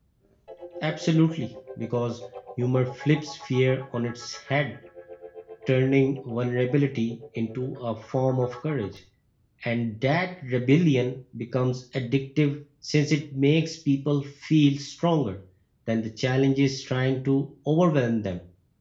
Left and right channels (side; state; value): both; identical; correlation 1.00